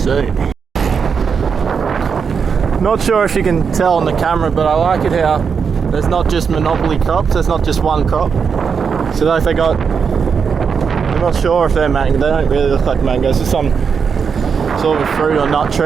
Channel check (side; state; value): left; quieter; 6.2 dB